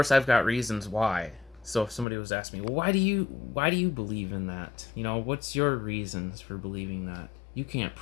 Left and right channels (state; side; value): drops out; right; at 2.1 s